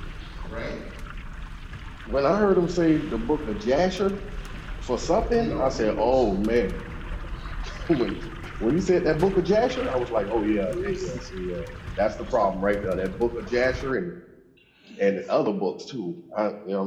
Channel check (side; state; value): both; identical; correlation 1.00